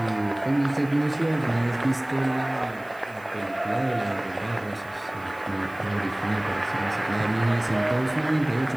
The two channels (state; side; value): noise; right; hiss, 27 dB below the sound